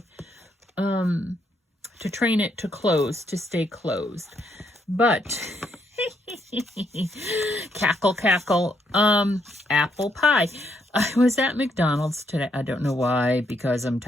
to train it to close, to stay closed. But, cackle, cackle, apple pie. I was at McDonald's today. I don't know why, because I'm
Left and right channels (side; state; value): both; normal; correlation 0.75